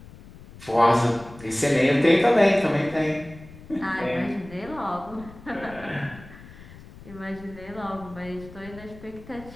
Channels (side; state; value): left; noise; rumble, 18 dB below the sound